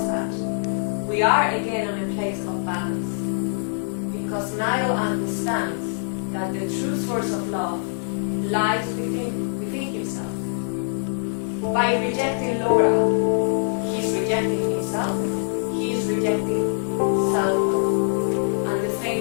that, we are again in a place of balance. Because Niall understands that the true source of love lies within himself. By rejecting Laura, he's rejecting himself, he's rejecting self-love. And the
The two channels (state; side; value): silent; right; 62 dB below the other